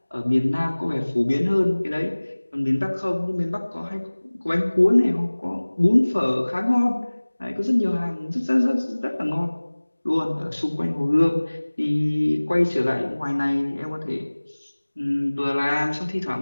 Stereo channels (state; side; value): inverted; both; correlation -1.00